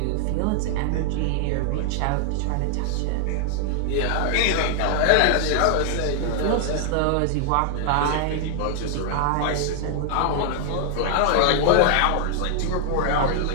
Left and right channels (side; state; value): both; different; correlation 0.00